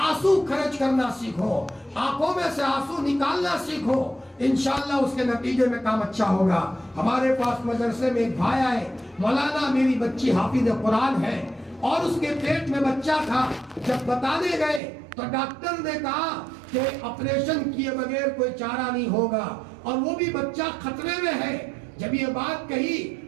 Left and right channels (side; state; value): left; drops out; at 14.8 s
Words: خرچ کرنا سیکھو، آنکھوں میں سے آنسو نکالنا سیکھو، انشاءاللہ اس کے نتیجے میں کام اچھا ہوگا۔ ہمارے پاس مدرسے میں ایک بھائی آئے، مولانا میری بچی حافظ قرآن ہے اور اس کے پیٹ میں بچہ تھا، جب بتانے گئے تو ڈاکٹر نے کہا کہ آپریشن کیے بغیر کوئی چارہ نہیں ہوگا، اور وہ بھی بچہ خطرے میں ہے۔ جب یہ بات کہی